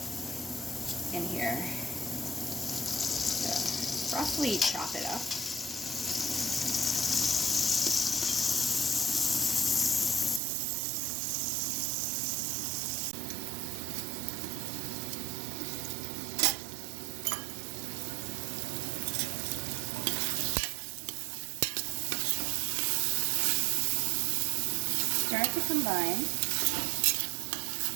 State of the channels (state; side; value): drops out; left; at 10.4 s